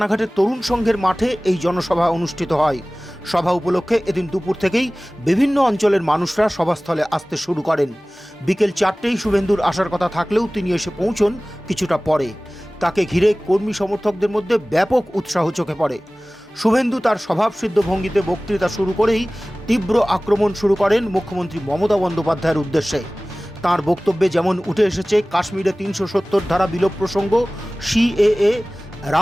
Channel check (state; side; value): normal; both; correlation 0.98